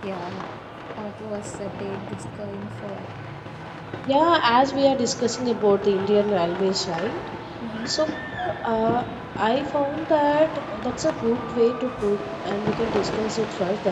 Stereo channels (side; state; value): both; identical; correlation 1.00